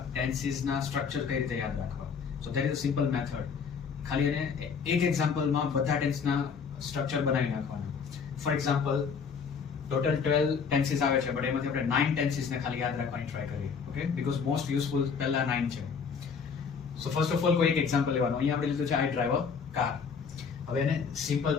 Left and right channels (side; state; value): right; quieter; 6.0 dB